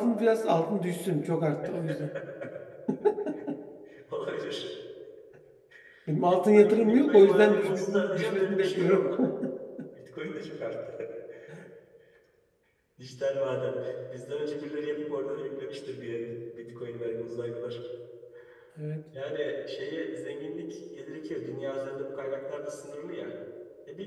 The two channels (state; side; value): identical; both; correlation 1.00